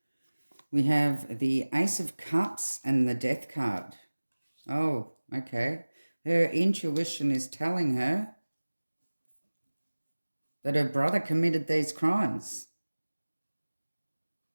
We have the Ace of Cups and the Death card. Oh, okay. Her intuition is telling her that her brother committed these crimes.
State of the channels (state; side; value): inverted; both; correlation -1.00